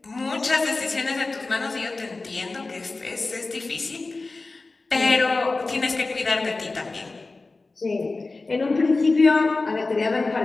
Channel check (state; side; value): quieter; right; 3.5 dB